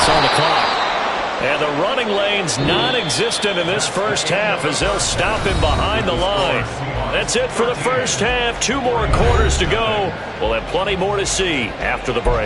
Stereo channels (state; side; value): identical; both; correlation 1.00